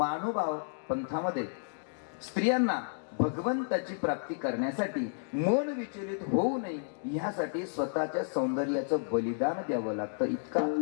पंथामध्ये स्त्रियांना भगवंताची प्राप्ती करण्यासाठी मन विचलित होऊ नये यासाठी स्वतःच्या सौंदर्याचं बलिदान द्यावं लागतं.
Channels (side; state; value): right; silent; digital silence